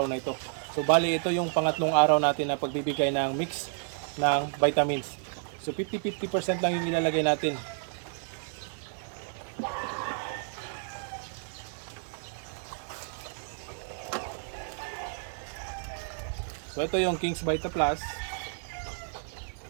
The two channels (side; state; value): left; silent; digital silence